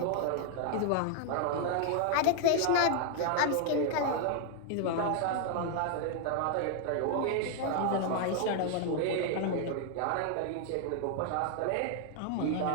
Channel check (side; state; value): both; different; correlation 0.00